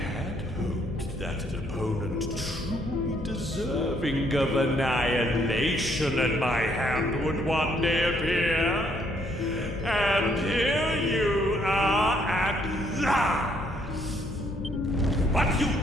hoped that an opponent truly deserving of annihilation at my hand would one day appear. And here you are at last. But you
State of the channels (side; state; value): left; noise; hum, 12 dB below the sound